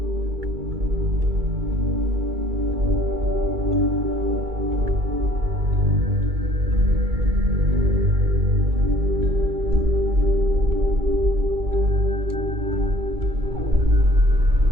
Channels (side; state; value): left; late; 2.3 ms